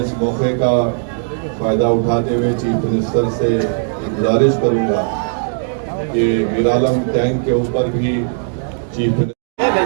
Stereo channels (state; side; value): silent; left; digital silence